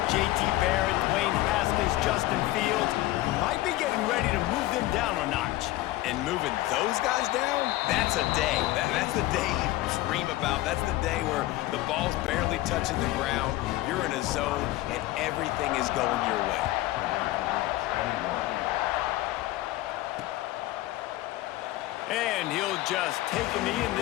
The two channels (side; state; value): right; quieter; 17.0 dB